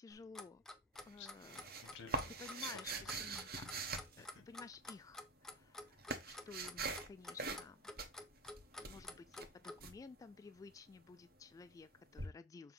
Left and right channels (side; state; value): both; normal; correlation 0.18